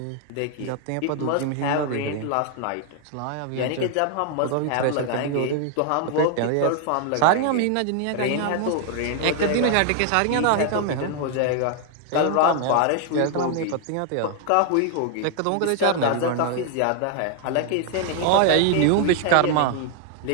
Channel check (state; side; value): different; both; correlation 0.00